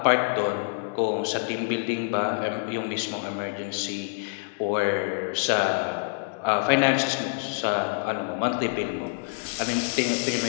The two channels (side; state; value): right; silent; digital silence